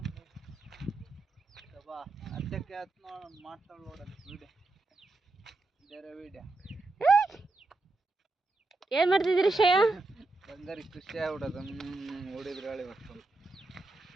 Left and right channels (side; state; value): left; quieter; 3.2 dB